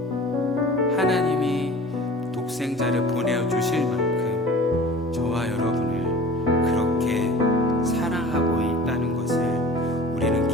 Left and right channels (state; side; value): normal; both; correlation 0.42